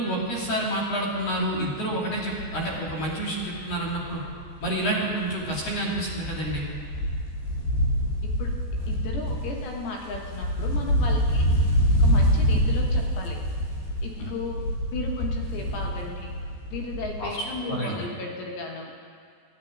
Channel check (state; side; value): late; right; 14 ms